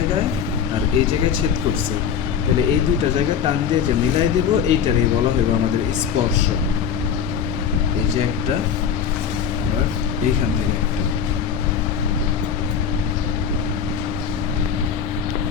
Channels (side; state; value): right; quieter; 7.6 dB